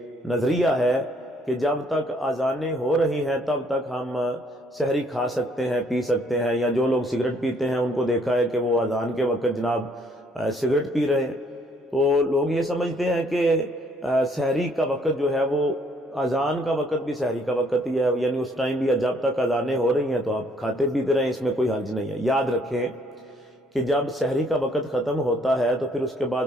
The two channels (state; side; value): normal; both; correlation 0.65